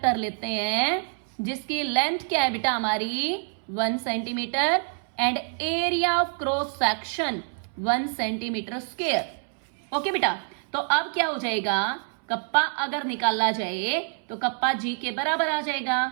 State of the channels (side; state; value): left; silent; 61 dB below the other